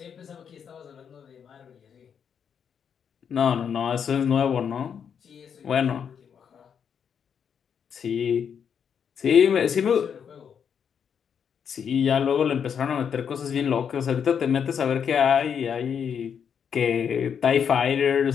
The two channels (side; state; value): right; quieter; 7.5 dB